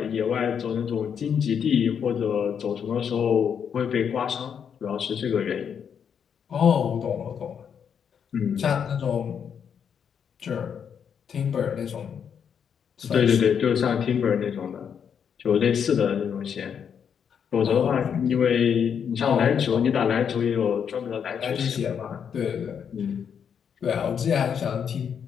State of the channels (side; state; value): right; quieter; 7.6 dB